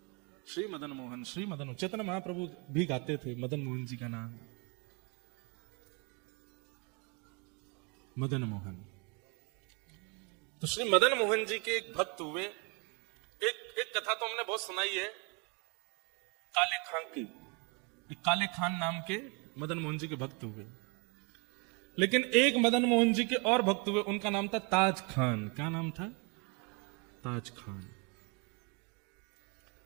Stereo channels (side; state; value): left; quieter; 32.5 dB